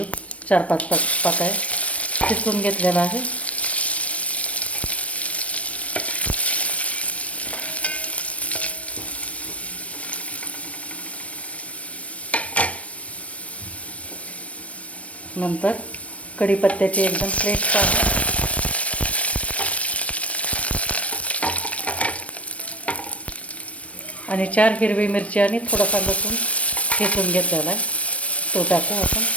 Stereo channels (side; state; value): right; late; 0.064 ms